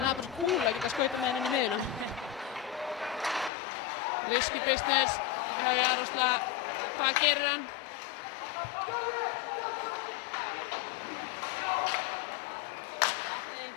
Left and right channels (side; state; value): right; drops out; at 3.5 s